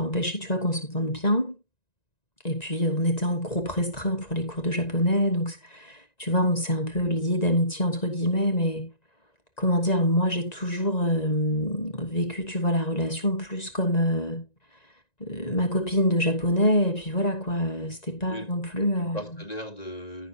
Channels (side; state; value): right; late; 1.9 ms